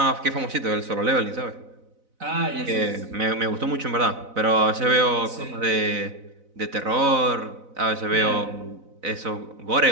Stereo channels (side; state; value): left; late; 4.0 ms